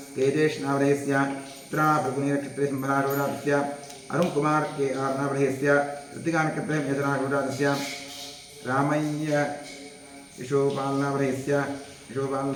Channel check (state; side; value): identical; both; correlation 1.00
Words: तेजेश नामधेयस्य उत्तराफल्गुनीनक्षत्रे सिंहराशोजातस्य अरुणकुमार KR नामधेयस्य कृत्तिकानक्षत्रे मेषराशोजातस्य रामय्य यशोपाल नामधेयस्य यशोपाल